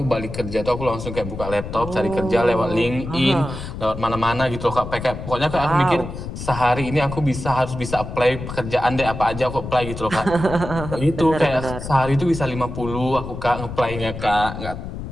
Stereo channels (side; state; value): left; noise; rumble, 8 dB below the sound